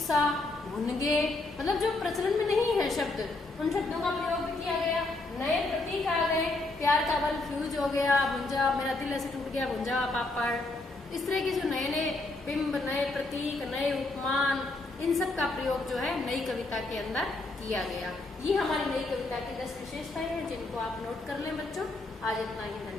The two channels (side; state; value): right; quieter; 3.0 dB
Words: भुनगे, मतलब जो प्रचलन में नहीं है शब्द, उन शब्दों का प्रयोग भी किया गया। नए प्रतीक आ गए, प्यार का बल फ्यूज हो गया, भुंजा, मेरा दिल ऐसे टूट गया, भुंजा पापड़। इस तरह के जो नए नए बिंब, नए प्रतीक, नए उपमान, इन सब का प्रयोग जो है नई कविता के अंदर किया गया। ये हमारी नई कविता की 10 विशेषताएं हैं जिनको आप नोट कर लें बच्चों। आज इतना ही,